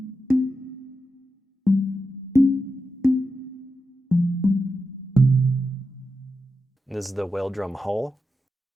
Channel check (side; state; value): both; normal; correlation 0.89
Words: This is the whale drum hull.